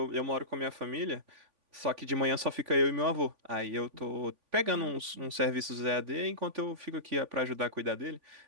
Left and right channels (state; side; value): late; left; 3.5 ms